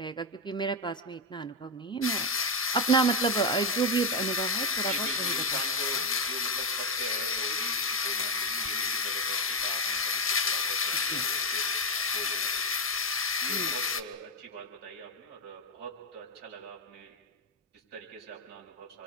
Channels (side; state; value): both; normal; correlation 0.05